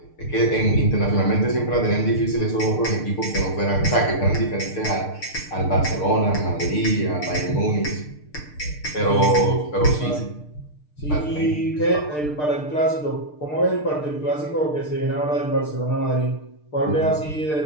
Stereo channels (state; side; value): late; right; 6.6 ms